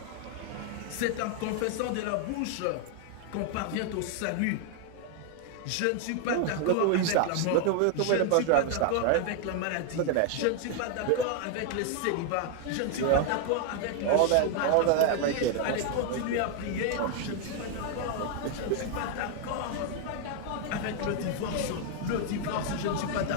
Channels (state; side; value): different; both; correlation 0.00